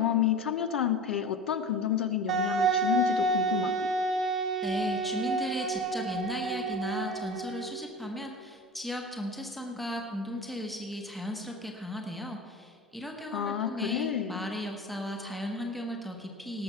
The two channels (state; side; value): normal; both; correlation 0.33